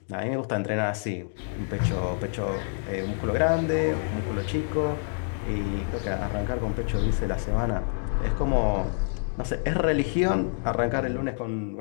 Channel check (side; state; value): right; silent; digital silence